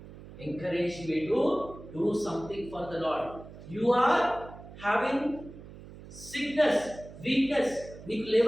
encourage me to do something for the Lord. You are having sickness, weakness, నీకు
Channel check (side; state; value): right; noise; hum, 16 dB below the sound